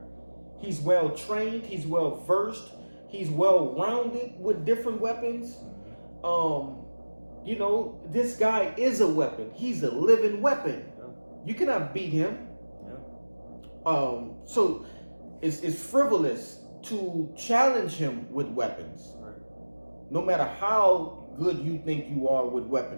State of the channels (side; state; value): both; inverted; correlation -1.00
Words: He's well trained. He's well versed. He's well rounded with different weapons. This guy is a weapon. He's a living weapon. Yeah. You cannot beat him. Yeah. So it's frivolous to challenge him with weapons. Right. No matter how good you think you are with